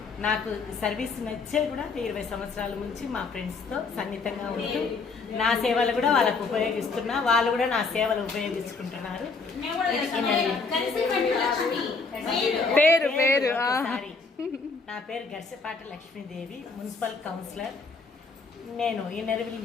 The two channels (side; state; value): right; quieter; 4.4 dB